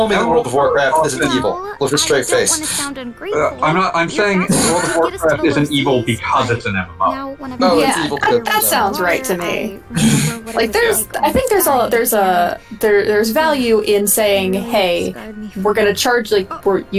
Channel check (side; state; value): both; identical; correlation 1.00